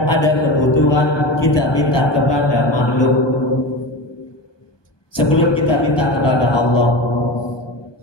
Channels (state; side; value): late; right; 1.2 ms